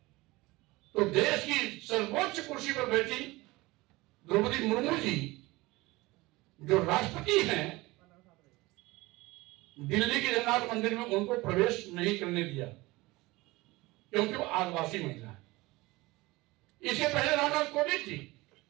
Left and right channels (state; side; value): quieter; left; 21.1 dB